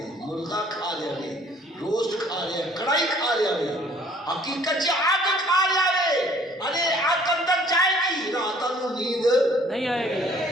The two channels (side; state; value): both; normal; correlation 0.57